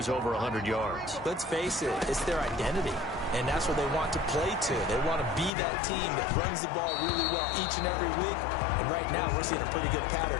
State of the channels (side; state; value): right; drops out; at 5.5 s